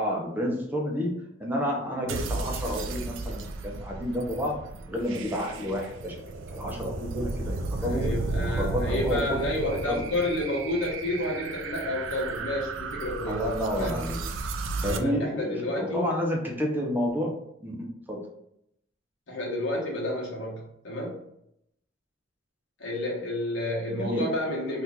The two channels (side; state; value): both; normal; correlation 0.43